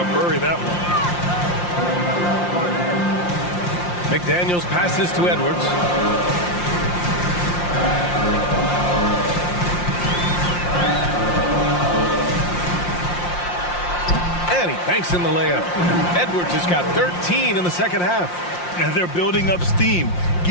bury that one. McDaniels passes to Edwards. And he banks in the layup. Edwards has got 13 in the second half. And they're building up steam,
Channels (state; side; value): late; right; 5.7 ms